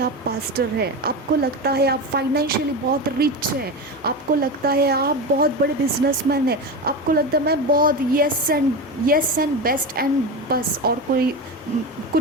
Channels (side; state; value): both; normal; correlation 0.21